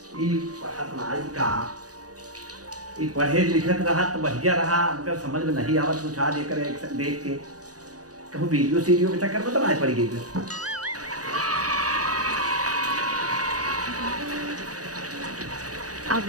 पढ़त नाई का पढ़े लिखत रहा तो बढ़िया रहा, हमको समझ में नहीं आवत कुछ आज एक देख के कहूँ वीडियो सीडियो के चक्कर में तो नहीं पड़ गई। अब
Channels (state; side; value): late; left; 0.67 ms